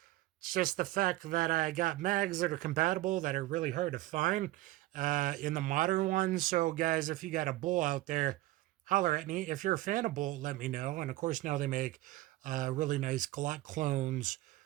just the fact that I got mags that are compatible that are really hard to find in the modern ones. So guys, if you got a bull out there, holler at me. If you're a fan of bull, let me know. And of course, now they make really nice Glock clones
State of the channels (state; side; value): quieter; left; 16.9 dB